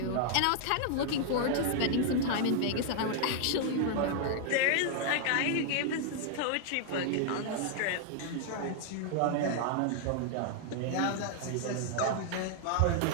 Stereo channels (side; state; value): both; different; correlation 0.00